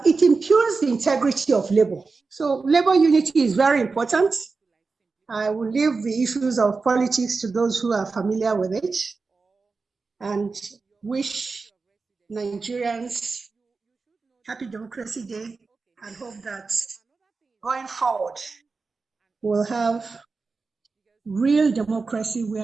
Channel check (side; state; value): left; quieter; 4.3 dB